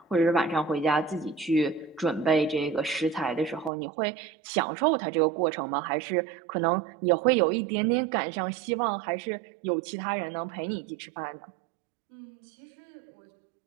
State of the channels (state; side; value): drops out; left; at 3.7 s